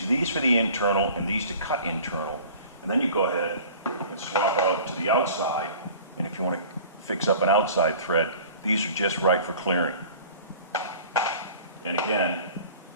these for the internal and these to cut internal. And then you go ahead and swap out to the outside. And if you want to fix up an outside thread, these are just right for clearing. And again,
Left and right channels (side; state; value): both; inverted; correlation -0.45